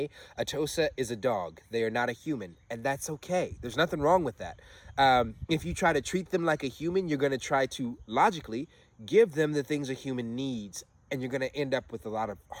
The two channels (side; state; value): both; identical; correlation 1.00